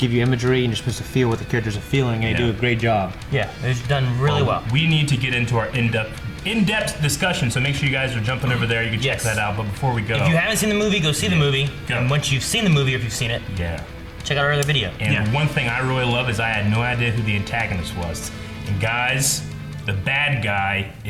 you imagery and you're supposed to feel what the characters are feeling, and they do a great job. Yeah, it's done really well. We need to get into our in-depth discussion, so make sure you guys are jumping over there. You can check Yes. that out. But before we go, If you haven't seen the movie, go see the movie. Go. And once you've seen the movie, or if you've seen it, yeah. check out our other video. And Yeah. one thing I really love is I had no idea who the antagonist was. And guys, the bad guy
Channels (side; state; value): both; identical; correlation 1.00